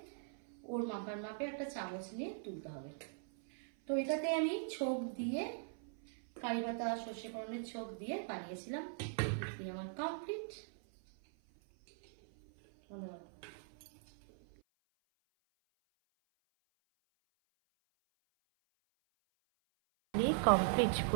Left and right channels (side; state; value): left; silent; 51 dB below the other